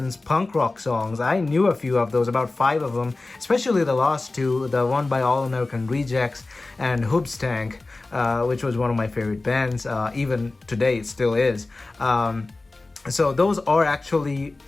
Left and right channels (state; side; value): quieter; right; 3.3 dB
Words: punk rock songs. I knew a few of those, about 5 of them, especially the last two, the one by All American Rejects and Hoobstank. Which was one of my favorite bands. Even today, it still is. So those are actually